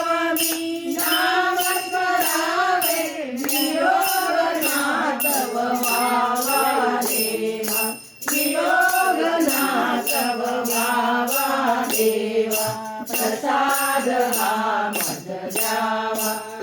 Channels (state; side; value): identical; both; correlation 1.00